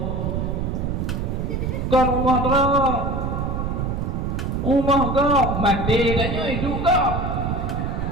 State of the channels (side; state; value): right; noise; rumble, 1 dB below the sound